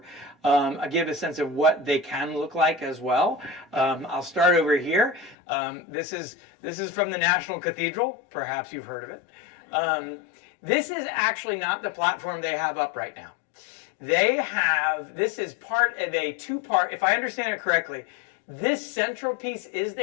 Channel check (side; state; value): right; drops out; at 5.4 s